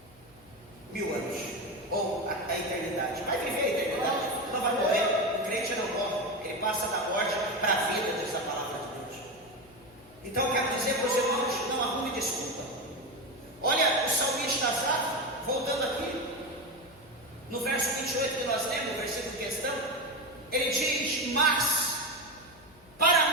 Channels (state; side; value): noise; left; hum, 26 dB below the sound